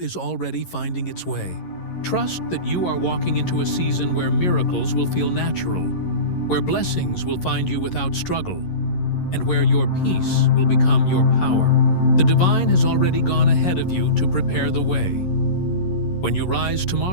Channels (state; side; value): late; right; 11 ms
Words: already finding its way. Trust that you are walking into a season where miracles will feel natural, where blessings will find you without struggle, and where your peace will become your power. The divine has already gone ahead of you to prepare the way. When you rise